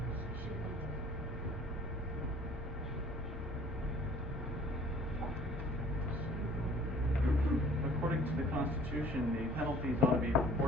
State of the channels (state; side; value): normal; both; correlation 0.53